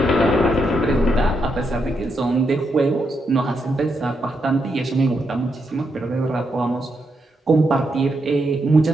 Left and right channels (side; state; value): both; normal; correlation 0.81